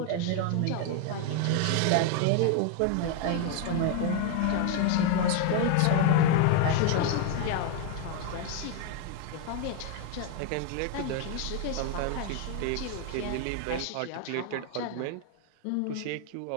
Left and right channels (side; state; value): both; different; correlation 0.01